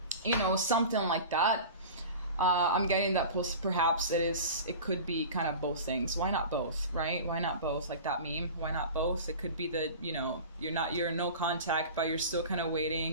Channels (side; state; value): both; inverted; correlation -0.36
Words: know, something like that. I'm getting that perhaps it could be kind of both things. Why not both, right? Why not both? Like that meme, why not both? It could be that, you know, you're in no contact, but you're still kind of